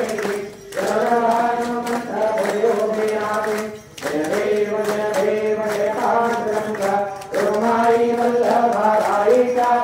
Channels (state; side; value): identical; both; correlation 1.00